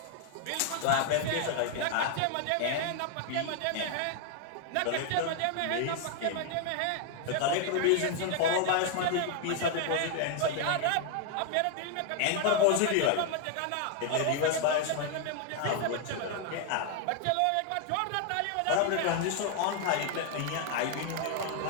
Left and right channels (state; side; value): different; both; correlation 0.00